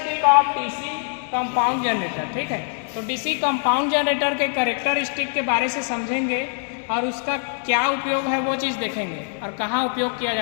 of DC compound generator. ठीक है, तो डीसी कंपाउंड जनरेटर के कैरेक्टरिस्टिक के बारे से समझेंगे और उसका क्या उपयोग है वो चीज़ देखेंगे और कहाँ उपयोग किया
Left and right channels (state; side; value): silent; right; 58 dB below the other